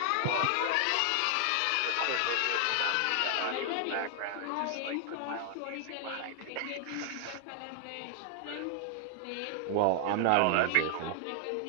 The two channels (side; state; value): both; different; correlation 0.00